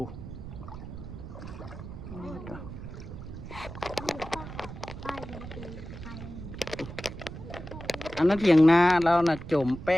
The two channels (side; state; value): right; noise; rumble, 11 dB below the sound